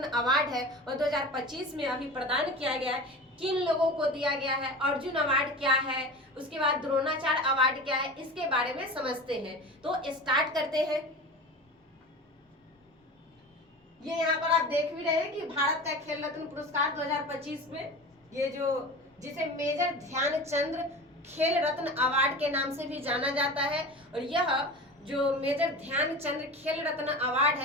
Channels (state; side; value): normal; both; correlation 0.33